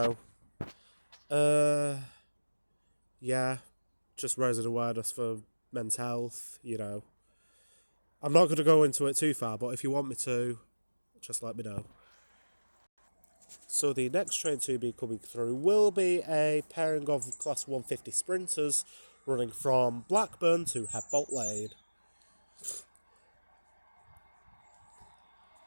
yeah, just raising awareness for men's health, I'm not going to go into it too far, but if you want me to, just let me know. So the next train to be coming through will be a pairing of Class 150 Sprinters running from Blackburn to Headbolt Lane.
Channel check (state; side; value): inverted; both; correlation -1.00